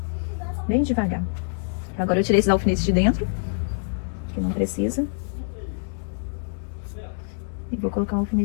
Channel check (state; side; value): silent; right; 62 dB below the other